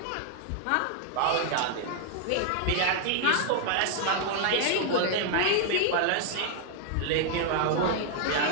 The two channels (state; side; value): different; both; correlation 0.00